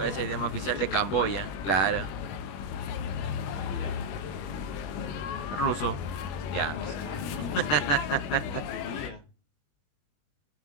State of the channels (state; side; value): late; right; 21 ms